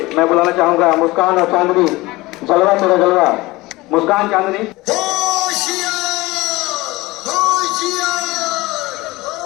मैं बुलाना चाहूंगा मुस्कान और चांदनी, जलवा तेरा जलवा। मुस्कान, चांदनी।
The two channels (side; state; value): right; quieter; 20.6 dB